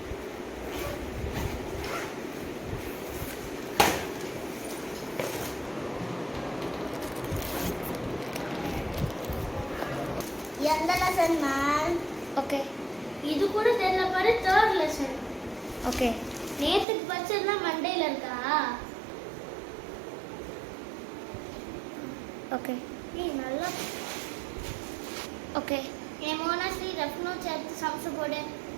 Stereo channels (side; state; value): left; drops out; at 16.9 s